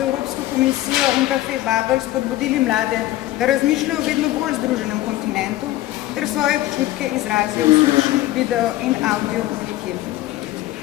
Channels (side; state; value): right; quieter; 16.0 dB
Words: komisijo in Café Babel spodbudili mlade, da razmišljajo o vedno bolj združenem kontinentu ter svoje občutke izrazijo v slušni, video in audio obliki.